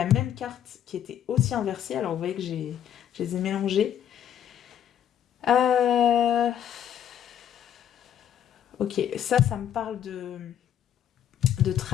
même carte qui était aussi inversée. Alors vous voyez que je les ai mélangées. Ok, ça me parle de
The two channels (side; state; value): right; quieter; 9.9 dB